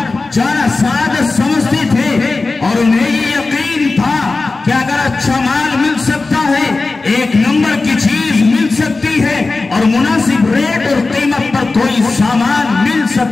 جانا سعادت سمجھتے تھے اور انہیں یہ یقین تھا کہ اگر اچھا مال مل سکتا ہے، 1 نمبر کی چیز مل سکتی ہے اور مناسب ریٹ اور قیمت پر کوئی سامان مل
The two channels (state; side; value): quieter; right; 3.6 dB